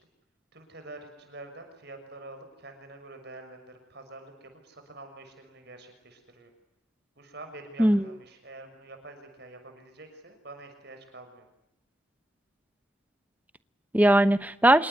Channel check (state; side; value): normal; both; correlation 0.88